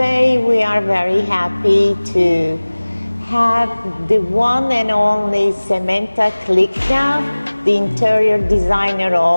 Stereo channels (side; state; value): both; inverted; correlation -1.00